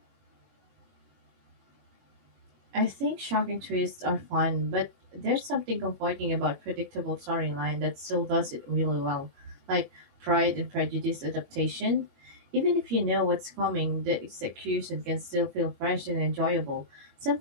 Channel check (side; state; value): left; late; 21 ms